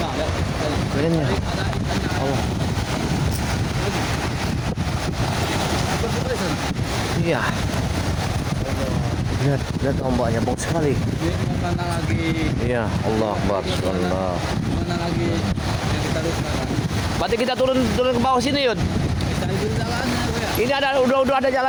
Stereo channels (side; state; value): both; identical; correlation 1.00